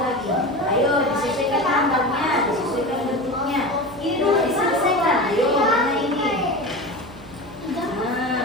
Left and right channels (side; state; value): right; noise; hum, 20 dB below the sound